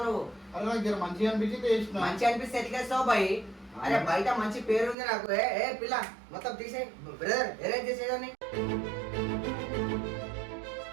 నువ్వు? అదే నాకు మంచిగా అనిపించింది వేసిన. మంచి అనిపిస్తే ఎట్లా వేస్తావు బాయ్? అరే బయట మంచి పేరు ఉంది నాకు. ఏ పిల్ల మొత్తం తీసే బ్రదర్ అరేంజ్ చేసేదాన్ని.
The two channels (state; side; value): drops out; left; at 5.0 s